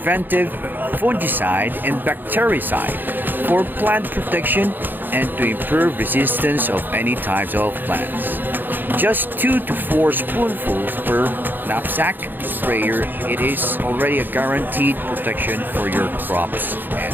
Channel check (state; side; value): late; left; 0.091 ms